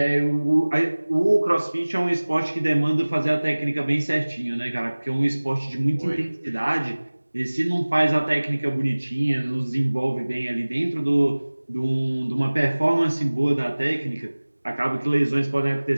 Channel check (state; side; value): inverted; both; correlation -1.00